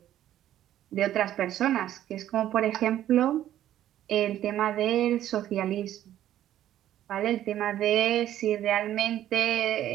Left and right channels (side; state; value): left; quieter; 12.2 dB